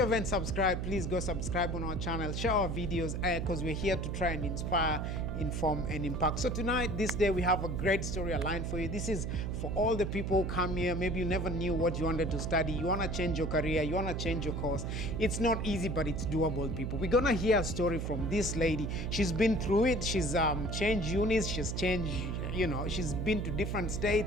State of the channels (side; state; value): right; noise; hum, 2 dB below the sound